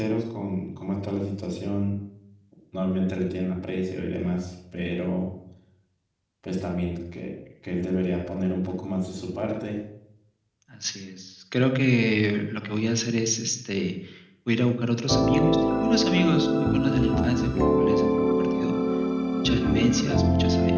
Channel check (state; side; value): identical; both; correlation 1.00